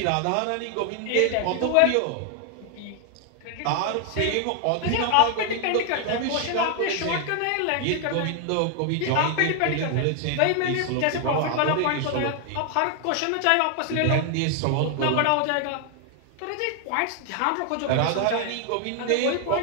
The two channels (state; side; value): different; both; correlation 0.00